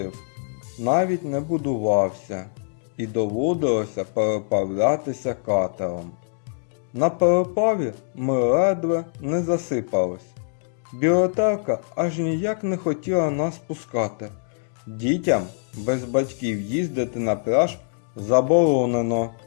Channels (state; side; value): silent; right; digital silence